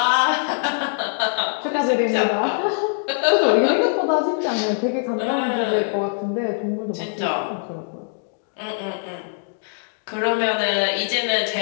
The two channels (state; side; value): silent; right; digital silence